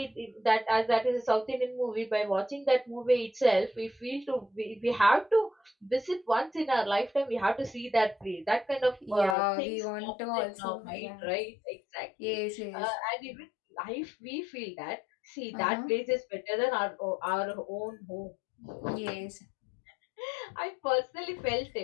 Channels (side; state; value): right; drops out; at 9.3 s